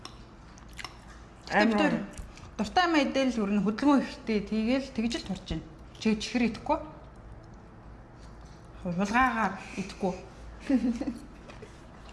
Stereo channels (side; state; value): both; identical; correlation 1.00